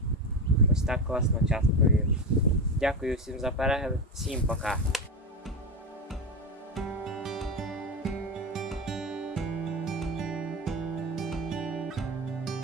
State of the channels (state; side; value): normal; both; correlation 0.19